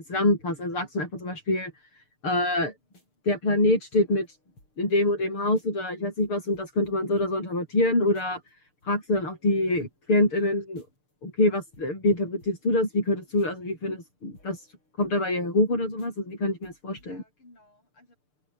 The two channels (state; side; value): late; right; 6.7 ms